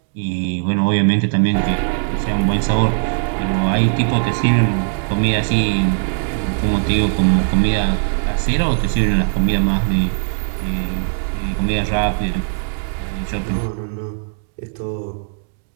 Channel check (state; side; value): silent; left; digital silence